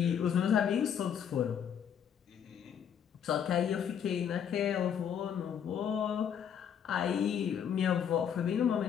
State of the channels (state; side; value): quieter; right; 8.4 dB